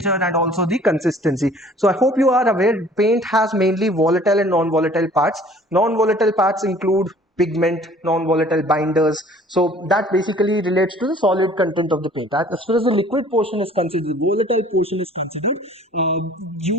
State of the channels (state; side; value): normal; both; correlation 0.52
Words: and also the consistency. So I hope you are aware, paint has mainly volatile and non-volatile parts. Non-volatile parts include pigment, non-volatile binders. So that basically relates to the solid content of the paint. As far as the liquid portion is considered, the volatile portion is considered,